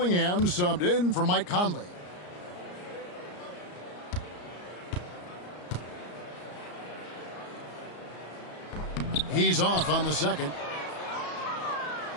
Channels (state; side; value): late; right; 34 ms